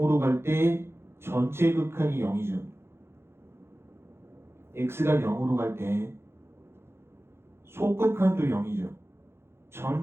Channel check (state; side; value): late; left; 0.12 ms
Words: 갈 때 전체 극한이 0이죠. x가 0으로 갈 때 속극한도 0이죠.